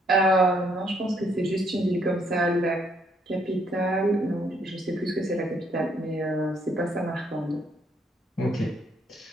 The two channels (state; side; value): normal; both; correlation 0.70